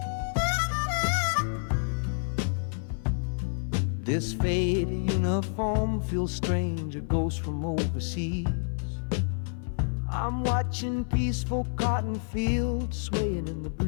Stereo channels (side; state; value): right; silent; 59 dB below the other